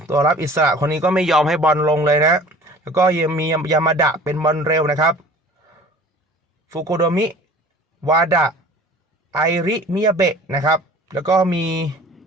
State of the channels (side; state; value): both; normal; correlation 0.46